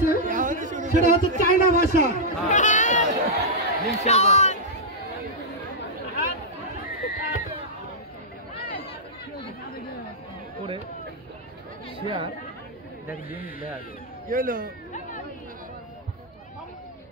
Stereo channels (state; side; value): normal; both; correlation -0.08